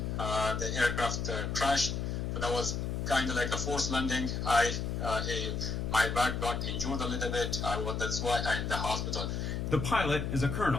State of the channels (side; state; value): left; noise; hum, 2 dB below the sound